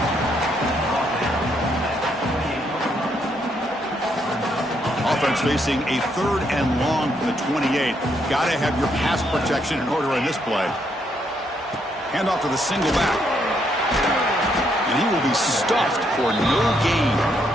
Offense facing a third and long from the 28. Got to have your pass protection in order in this play. Hand off to the single back. And he will be stuffed for no gain.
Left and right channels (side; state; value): both; normal; correlation 0.74